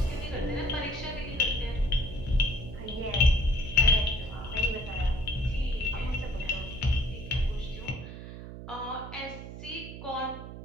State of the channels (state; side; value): noise; right; hum, 11 dB below the sound